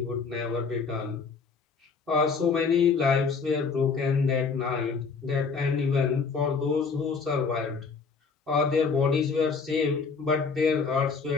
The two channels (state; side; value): quieter; right; 5.1 dB